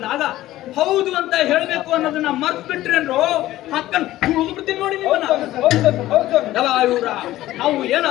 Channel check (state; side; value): quieter; right; 15.3 dB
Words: ಹೌದು ಅಂತ ಹೇಳ್ಬೇಕು ಅನ್ನೋದನ್ನ ಮರ್ತ್ ಬಿಟ್ರೇನ್ರು ಹಕ್ಕನ್ ತುಳಿದು ಬಿಡ್ತೀನಿ ನೋಡಿ ನಿಮ್ಮನ್ನ. ಇವ್ರ ನಾವು